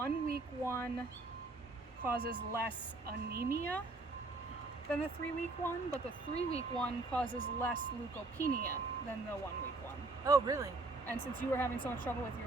week one causes less anemia than the 3 week one, but the 3 week one causes less leukopenia than the 1 week one. Oh, really? And since you were having so much trouble with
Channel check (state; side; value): quieter; left; 3.2 dB